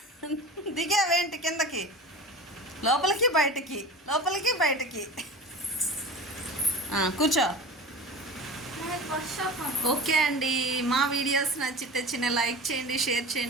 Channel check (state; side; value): normal; both; correlation 0.34